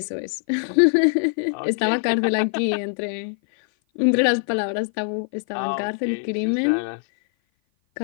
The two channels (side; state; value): right; silent; 56 dB below the other